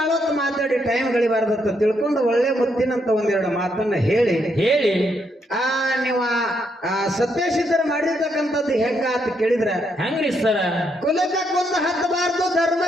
ಹೊತ್ತು ಮಾತಾಡಿ ಟೈಮ್ ಗಳಿಬಾರ್ದತ್ತ ತಿಳ್ಕೊಂಡು ಒಳ್ಳೆ ಮುತ್ತಿನಂತ ಒಂದೆರಡು ಮಾತನ್ನ ಹೇಳಿ ನೀವು ಸತ್ಯಸಿದ್ಧರು ಮಾಡಿರ್ತಕ್ಕಂಥದ್ದು ಹೆಂಗ ಅಂತ ಕೇಳಿದ್ರ ಹೆಂಗ್ರಿ ಸರ? ಕುಲಕ್ಕೆ ಕೊಂದು ಹತ್ತಬಾರ್ದು,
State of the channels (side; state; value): both; normal; correlation 0.77